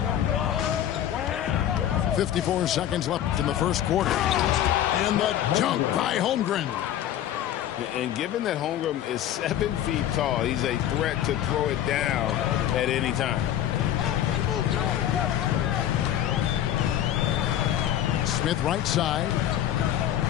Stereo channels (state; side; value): quieter; right; 11.4 dB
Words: 54 seconds left in the first quarter. And the dunk by Holmgren. And given that Holmgren is 7 feet tall, he's a threat to throw it down at any time. Smith right side